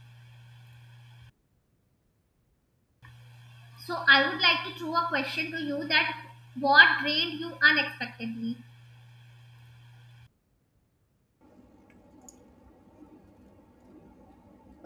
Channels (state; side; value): identical; both; correlation 1.00